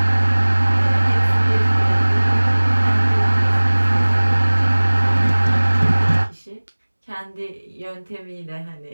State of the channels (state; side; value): inverted; both; correlation -1.00